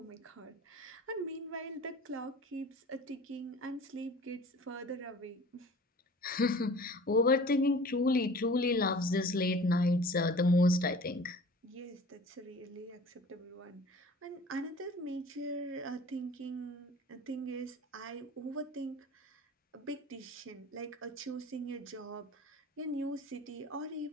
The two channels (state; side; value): normal; both; correlation 0.44